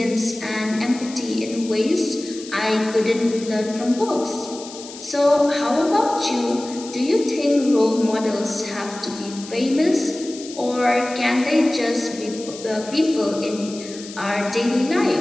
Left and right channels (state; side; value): noise; left; hiss, 15 dB below the sound